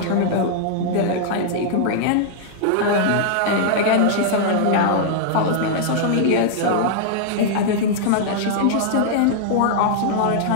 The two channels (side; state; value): both; different; correlation -0.01